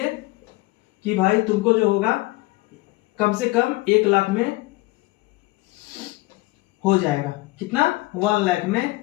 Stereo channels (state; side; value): quieter; right; 21.1 dB